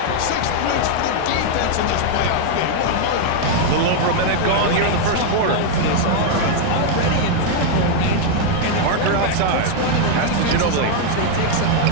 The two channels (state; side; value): different; both; correlation 0.00